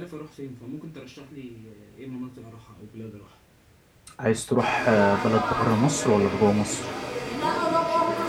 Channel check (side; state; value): both; identical; correlation 1.00